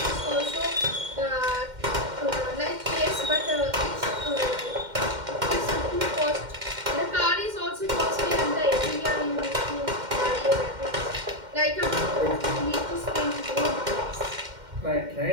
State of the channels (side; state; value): left; late; 2.1 ms